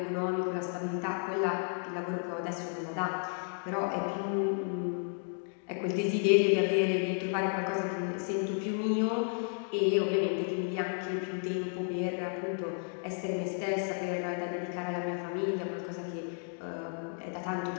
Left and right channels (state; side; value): silent; right; 56 dB below the other